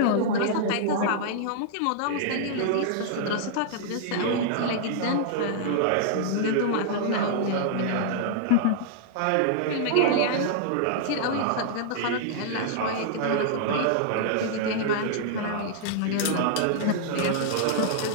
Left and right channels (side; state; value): both; different; correlation -0.01